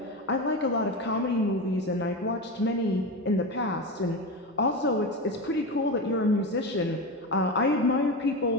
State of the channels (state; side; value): normal; both; correlation 0.21